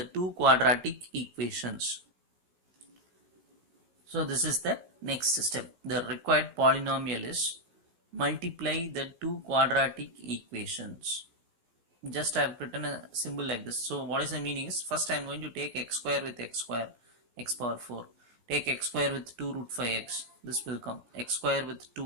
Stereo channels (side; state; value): left; late; 16 ms